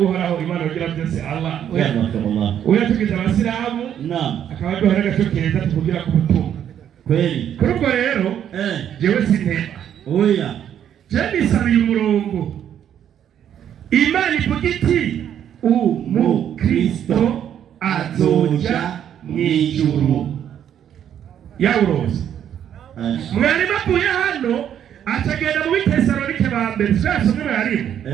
Imana ugira byose Allah uyatugize abasilamu akaba duhora gashokeza tuvugira ku butumwa kweli. Kuri ubwo rero jewe sintema oya jewe nisabiye umurongo Imana ivuga iti umukristo azoja mw'ijuru. Yawuroze mwari bavuye hano atagenda mu Bitesalonike ba mbere twasomye barimo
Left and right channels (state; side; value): quieter; left; 9.7 dB